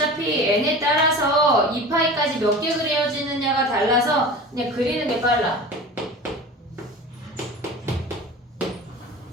n에 따라서 2파이까지 몇 개 그려지느냐가 달라서 그냥 그리는 게 빨라.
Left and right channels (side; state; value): both; normal; correlation 0.35